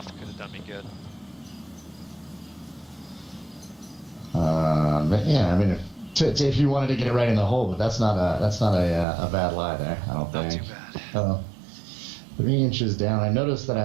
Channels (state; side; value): drops out; left; at 9.1 s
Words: could have done me good. Yeah, I mean, if you wanted to get it right in the hole, but that's not a bad lie there. I don't Not think. too bad. 3 inches down. I noticed that